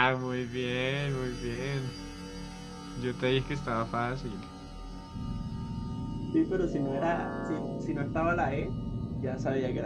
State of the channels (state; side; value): identical; both; correlation 1.00